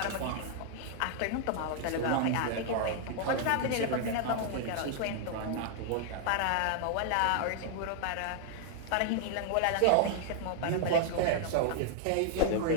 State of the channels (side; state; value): both; different; correlation 0.00